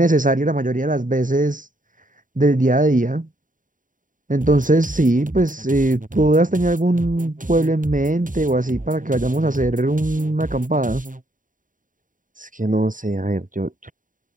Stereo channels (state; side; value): late; left; 0.38 ms